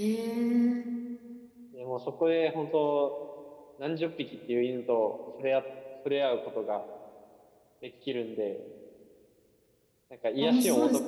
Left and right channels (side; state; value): both; identical; correlation 1.00